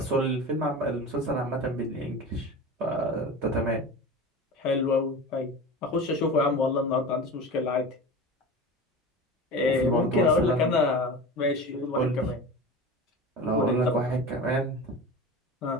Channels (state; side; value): normal; both; correlation 0.31